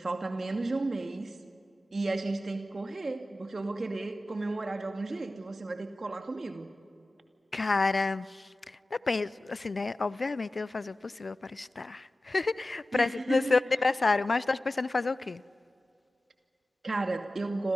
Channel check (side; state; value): both; normal; correlation 0.95